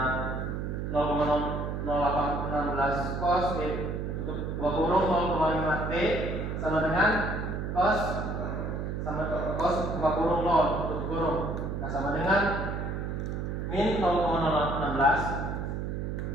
0,0816 cos dua kurung 0,5 t sama dengan cos buka kurung 0 tutup kurung. Nah, sama dengan min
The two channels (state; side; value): noise; right; hum, 3 dB below the sound